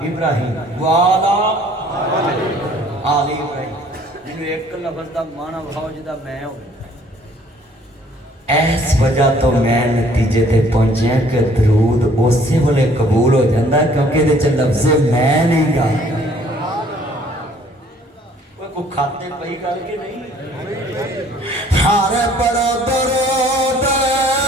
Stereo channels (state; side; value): normal; both; correlation 0.58